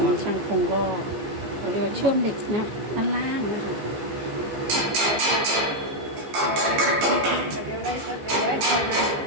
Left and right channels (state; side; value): late; left; 15 ms